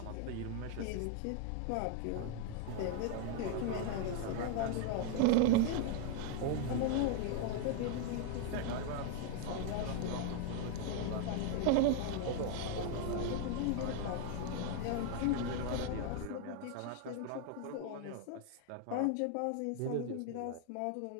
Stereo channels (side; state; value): both; different; correlation 0.00